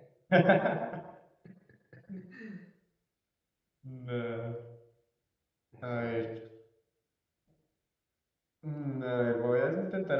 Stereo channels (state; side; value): identical; both; correlation 1.00